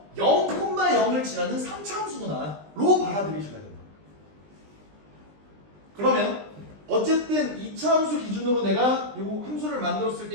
0,0을 지나는 3차 함수구나 로 받아들이셔야 된다. 그러면 어쨌든 2차 함수 기준으로 내가 이 함수를 만들었을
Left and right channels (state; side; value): late; left; 20 ms